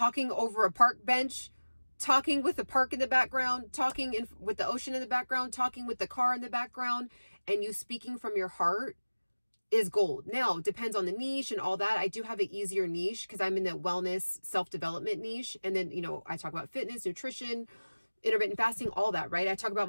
over a park bench, talking with the park in the background, talking with the ocean in the background, talking with the car in the background, and you speaking from your heart is gold. Now, depends on the niche and all that. I do have an easier niche because I'm in the wellness, self-development niche. And then, I talk about fitness, nutrition, intermittent fasting, all that, right? I talk about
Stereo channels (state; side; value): inverted; both; correlation -1.00